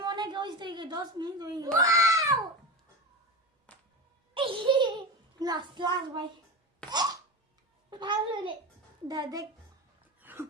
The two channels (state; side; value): normal; both; correlation 0.24